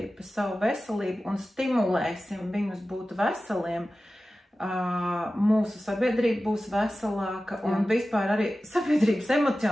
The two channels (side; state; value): both; normal; correlation 0.95